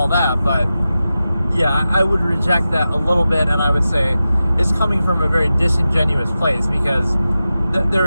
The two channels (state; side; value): inverted; both; correlation -0.93